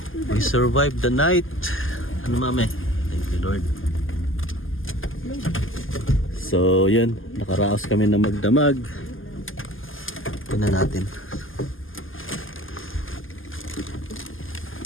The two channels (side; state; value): right; late; 0.59 ms